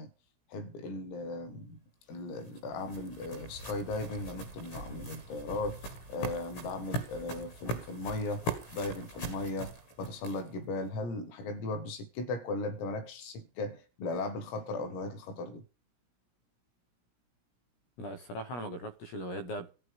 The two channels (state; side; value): late; right; 17 ms